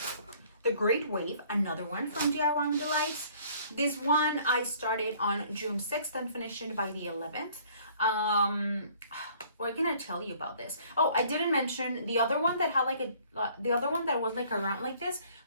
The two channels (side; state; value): both; inverted; correlation -0.57